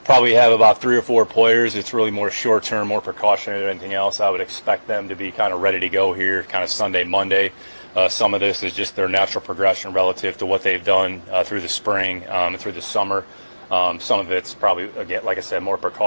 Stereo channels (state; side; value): inverted; both; correlation -1.00